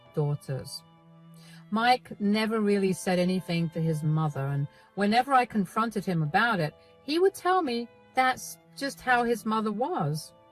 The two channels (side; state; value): both; identical; correlation 1.00